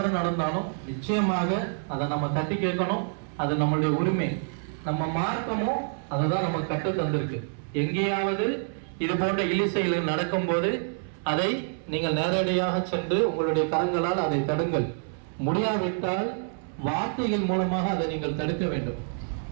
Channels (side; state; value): left; silent; digital silence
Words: நடந்தாலும் நிச்சயமாக அதை நம்ம தட்டி கேட்கணும். அது நம்மளுடைய உரிமை. நம்ம மார்க்கமும் அதை தான் நமக்கு கற்று தந்திருக்கு. எங்கேயாவது இது போன்ற இழிசெயல் நடக்கும் போது அதை நீங்கள் நேரடியாக சென்று உங்களுடைய கரங்களால் அதை தடுங்கள். முடியாவிட்டால் வார்த்தைகள் மூலமாக அதை நீங்கள் தடுக்க வேண்டும்.